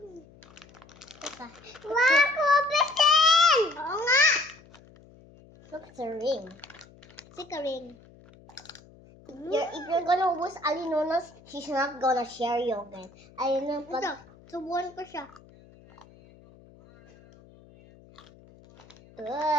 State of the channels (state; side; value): noise; left; hum, 25 dB below the sound